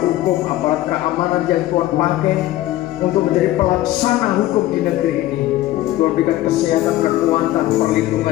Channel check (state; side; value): quieter; right; 15.2 dB